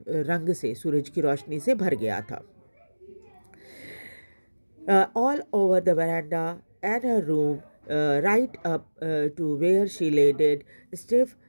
रंग से, सूरज की रोशनी से भर गया था। All over the veranda and her room, right up to where she lay dead, stiff,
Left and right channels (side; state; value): both; inverted; correlation -1.00